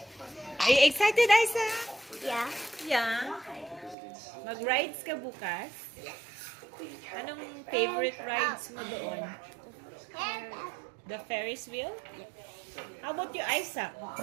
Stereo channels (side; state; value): left; drops out; at 4.0 s